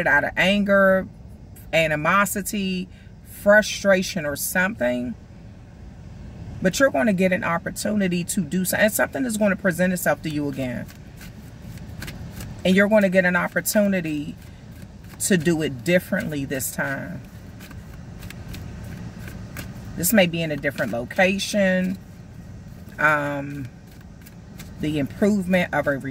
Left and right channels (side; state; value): both; identical; correlation 1.00